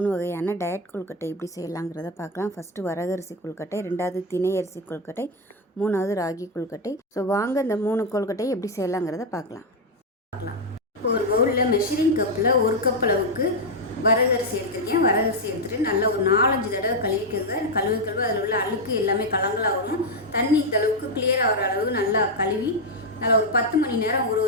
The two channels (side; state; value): both; normal; correlation 0.03